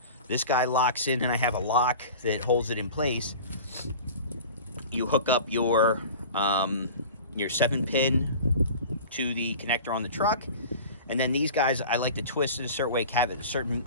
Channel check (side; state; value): both; inverted; correlation -0.38